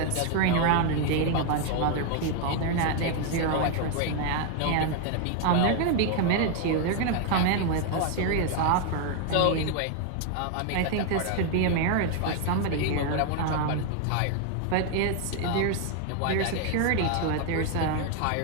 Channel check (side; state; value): both; different; correlation 0.00